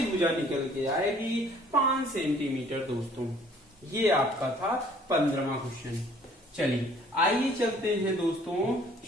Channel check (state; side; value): normal; both; correlation 0.57